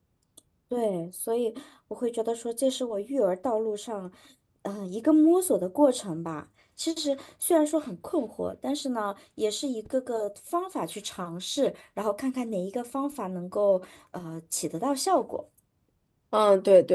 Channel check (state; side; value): identical; both; correlation 1.00